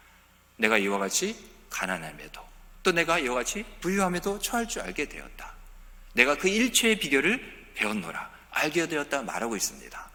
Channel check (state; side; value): identical; both; correlation 1.00